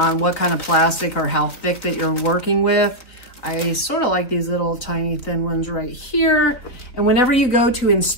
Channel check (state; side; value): late; right; 3.7 ms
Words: what kind of plastic or how thick that you're working with. I sort of like these little tiny thin ones right here. And whenever you go to